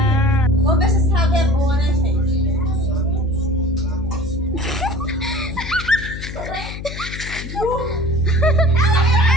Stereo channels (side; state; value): left; noise; hum, 9 dB below the sound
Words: Vamos ver se essa água é boa, né, gente?